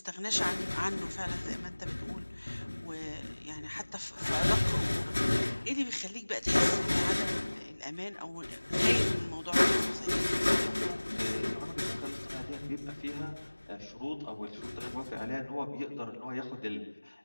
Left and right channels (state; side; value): inverted; both; correlation -1.00